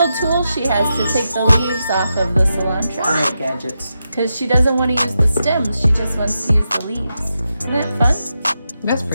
tool she has to take the leaves off of the cilantro. I like gadgets. Because she doesn't want to use the stems. She just wants to use the leaves. Isn't that fun? That's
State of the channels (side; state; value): both; inverted; correlation -0.87